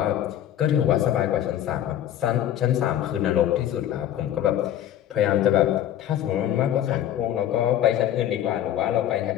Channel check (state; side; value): quieter; right; 11.4 dB